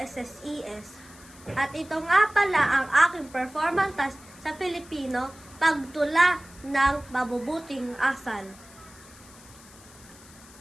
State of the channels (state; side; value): noise; left; hiss, 22 dB below the sound